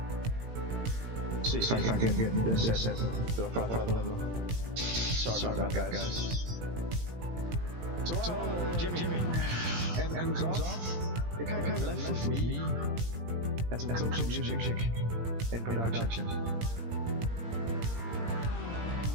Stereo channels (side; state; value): left; late; 17 ms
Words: See if I can get this set to a proper level. Sorry about that, guys. So Jimmy, and comes off. It kind of left with me and some close music in production.